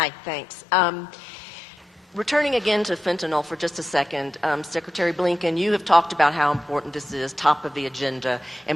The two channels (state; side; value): normal; both; correlation 0.89